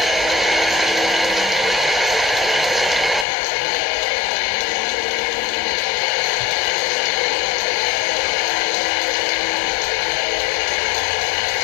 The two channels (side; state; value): right; drops out; at 3.2 s